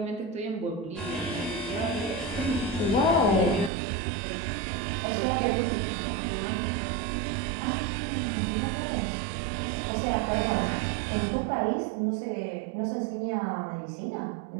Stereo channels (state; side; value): drops out; left; at 3.7 s